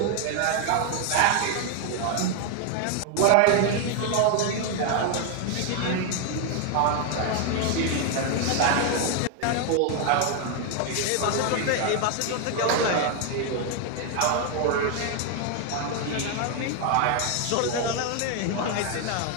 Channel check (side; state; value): both; different; correlation 0.01